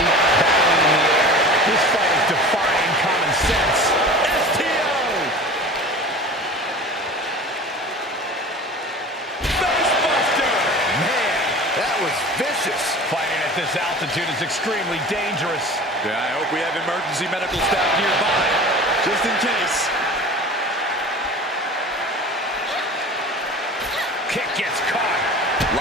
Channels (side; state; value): both; normal; correlation 0.38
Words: Battling in the air. This fight is defying common sense. STO! Facebuster! Man, that was vicious. Fighting at this altitude is extremely dangerous. Yeah, I hope we have emergency medical staff nearby, just in case. Kick gets caught.